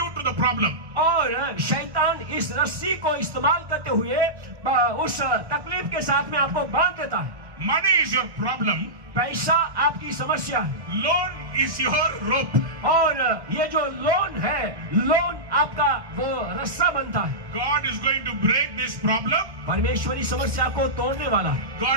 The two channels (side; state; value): left; late; 1.6 ms